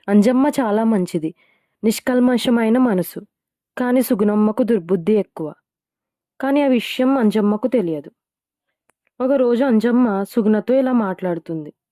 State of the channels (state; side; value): identical; both; correlation 1.00